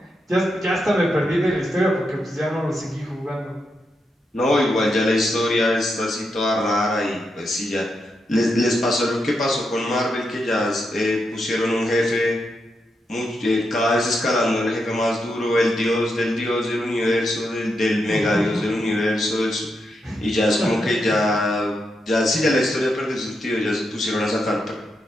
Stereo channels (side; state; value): both; normal; correlation 0.84